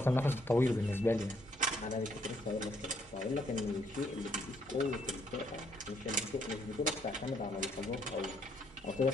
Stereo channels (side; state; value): both; normal; correlation 0.70